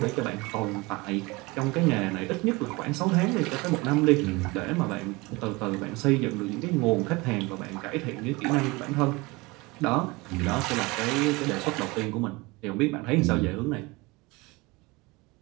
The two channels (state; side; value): quieter; left; 24.0 dB